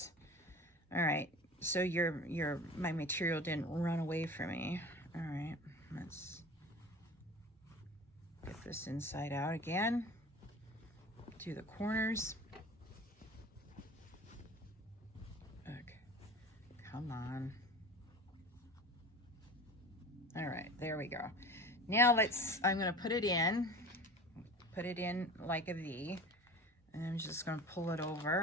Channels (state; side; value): normal; both; correlation 0.38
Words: All right. So my material didn't run away from me. All right. Let's get this inside out again. Do the corners. Okay. Come on. All right, there we go. Now I'm gonna put it in like a V, and I'm just gonna pull it